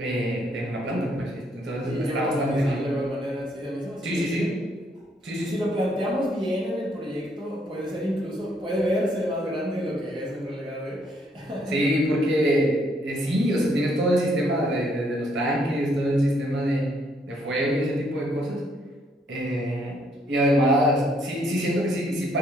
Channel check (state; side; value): normal; both; correlation 0.70